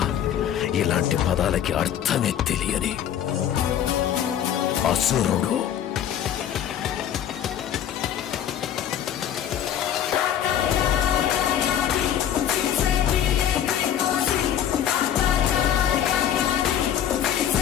ఇలాంటి పదాలకి అర్థమే తెలియని అసురుడు.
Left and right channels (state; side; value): quieter; right; 10.0 dB